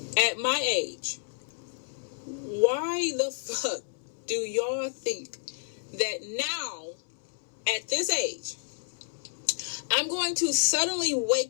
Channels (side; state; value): right; silent; 58 dB below the other